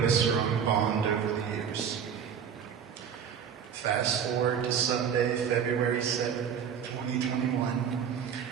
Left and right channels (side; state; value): left; quieter; 7.8 dB